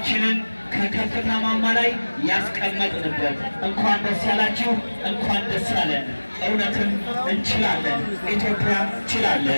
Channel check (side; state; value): both; inverted; correlation -1.00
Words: ከከፍታ ማማ ላይ ያስቀመጥንበት። እንኳን ደስ ያላችሁ፣ እንኳን ደስ ያለን። እውነትም እንችላለን። ኢትዮጵያ